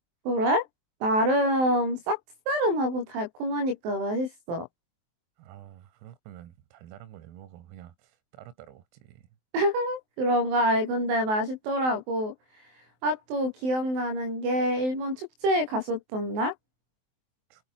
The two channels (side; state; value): left; late; 23 ms